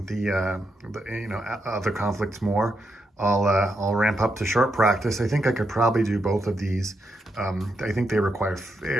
the other conflicts more, I'll ramp up to short practice. I think I could probably do both of these. I think they require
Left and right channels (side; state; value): both; normal; correlation 0.82